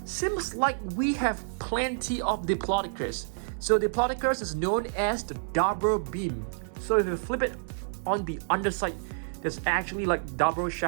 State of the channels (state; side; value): silent; left; digital silence